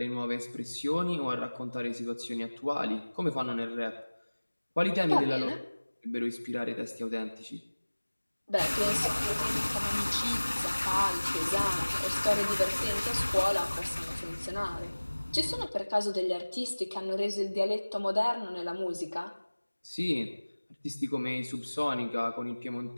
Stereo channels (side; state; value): both; inverted; correlation -1.00